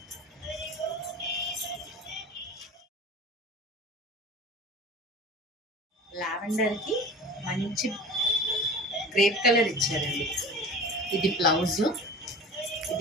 లావెండర్కి మంచి గ్రేప్ కలర్ ఇచ్చారండి. ఇది బ్లౌజ్,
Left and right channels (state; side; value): normal; both; correlation 0.38